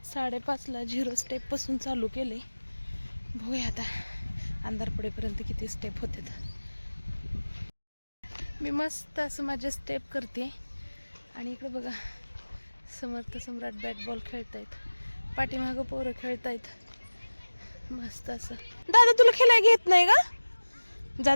5:30ला 0 स्टेपपासून चालू केले. बघूया आता अंधार पडेपर्यंत किती स्टेप होतात. मी मस्त असं माझे स्टेप करते. आणि इकडे बघा समर्थ सम्राट बॅट बॉल खेळतायत, पाठीमागं पोरं खेळतायत मस्त असं. दादा तुला खेळायला घेत नाही का? जा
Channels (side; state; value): both; inverted; correlation -1.00